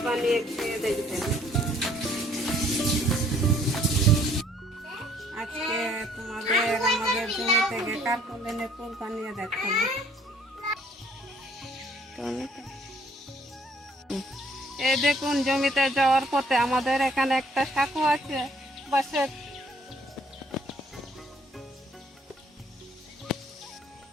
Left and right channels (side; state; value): both; normal; correlation 0.62